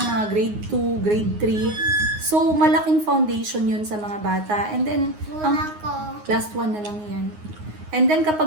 mga grade 2, grade 3. So, malaking foundation yun sa mga bata. And then, last one na lang yan. And then,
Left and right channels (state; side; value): late; left; 9.6 ms